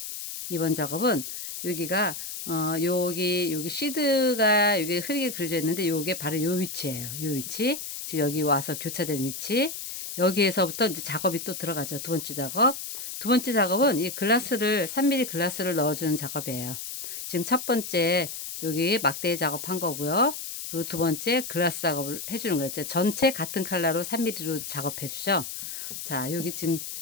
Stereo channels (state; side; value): noise; left; hiss, 7 dB below the sound